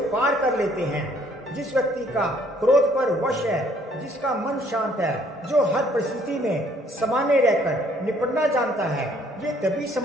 पार कर लेते हैं। जिस व्यक्ति का क्रोध पर वश है, जिसका मन शांत है, जो हर परिस्थिति में सामान्य रहकर निपटना जानता है, ये तभी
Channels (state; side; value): normal; both; correlation 0.62